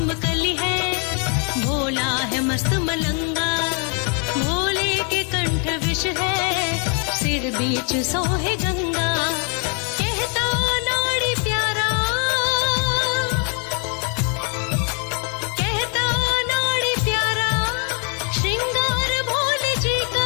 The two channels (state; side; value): quieter; right; 38.4 dB